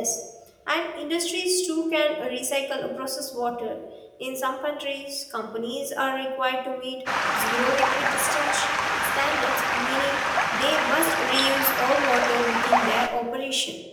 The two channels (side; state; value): both; identical; correlation 1.00